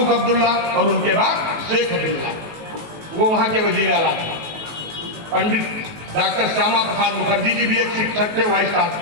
अब्दुल्ला और उनके बाद शेख अब्दुल्ला, वो वहां के वजीर आला थे। पंडित डॉक्टर श्यामा प्रसाद मुखर्जी जी भी एक शिक्षक थे, वाइस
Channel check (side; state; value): left; late; 19 ms